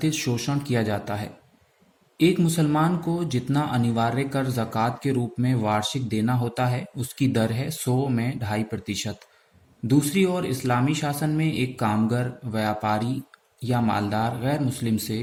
शोषण किया जाता है। एक मुसलमान को जितना अनिवार्य कर ज़कात के रूप में वार्षिक देना होता है, उसकी दर है 100 में 2.5%। दूसरी ओर इस्लामी शासन में एक कामगर, व्यापारी या मालदार गैर मुस्लिम से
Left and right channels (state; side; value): identical; both; correlation 1.00